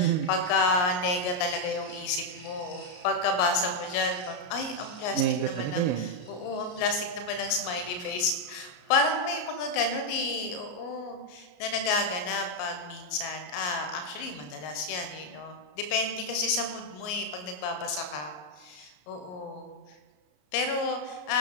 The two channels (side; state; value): right; late; 33 ms